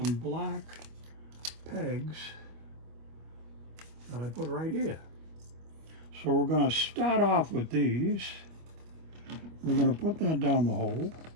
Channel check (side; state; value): left; late; 25 ms